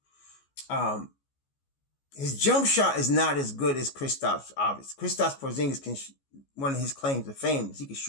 His jump shot is not as good as Kristaps, obviously. Kristaps Porzingis one of his claims to fame is he can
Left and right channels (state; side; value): late; right; 14 ms